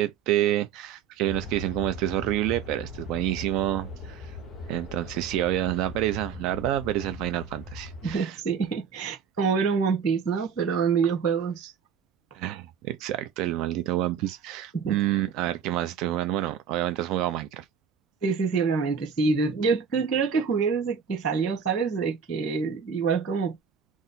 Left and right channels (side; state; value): left; quieter; 7.4 dB